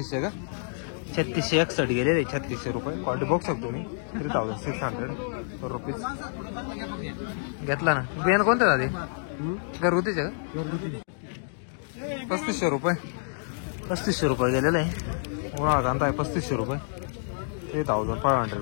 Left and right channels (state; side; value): silent; right; digital silence